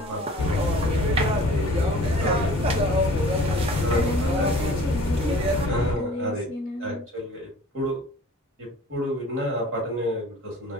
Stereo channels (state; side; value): normal; both; correlation 0.48